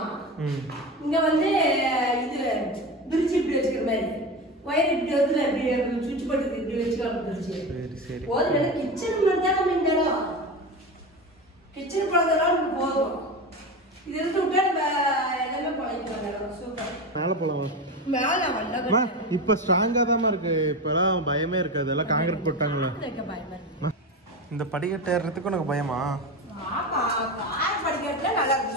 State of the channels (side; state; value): both; normal; correlation 0.23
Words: இங்க வந்து இது பிரிச்சு இப்படி வச்சுக்கிற மாதிரி ஒயர் இப்படி வந்து இப்படி சுவிட்ச் போட்டு இப்படி வச்சுக்கலாம். பிரிச்சு போதும். கிச்சன் மாதிரி தான் நம்ம இந்த இடம் கிச்சன் குழந்தைலாம் போதும். இது இருந்து விட்டா நம்ம எல்லாமே பழகிக்கலாம். சூப்பர். மேலே போகலாம். மேலே வரல. இப்போ ஸ்ட்ராங்காக தான் இருக்கு. இப்போலாம் பயமே இருக்காது. எல்லாம் காங்கிரீட் போட்டாங்களா? இந்த படிக்கட்டு ஏறுறதுக்கு உனக்கு பயமா? ஆமா கார் படிக்கட்டுல நல்லா